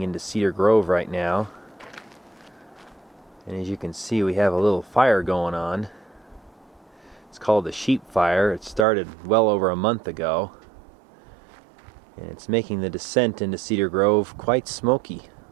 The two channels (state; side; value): drops out; left; at 8.8 s